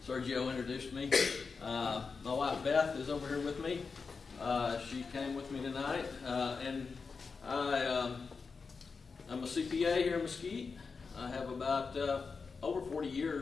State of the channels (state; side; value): quieter; right; 4.9 dB